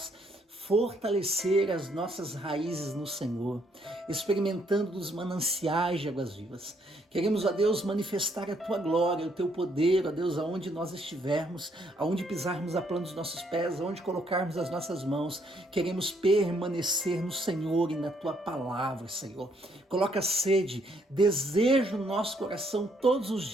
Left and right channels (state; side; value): normal; both; correlation 0.70